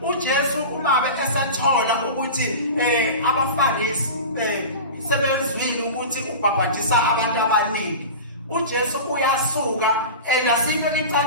uJesu umabe esathola ukuthi abaFarisi sebezwile ukuthi ubhabhadisa abantu abaningi, uJesu uyasuka enasinto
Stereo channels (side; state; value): both; inverted; correlation -0.30